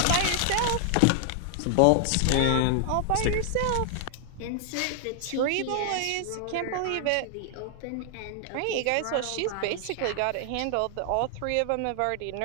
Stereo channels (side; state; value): both; different; correlation 0.00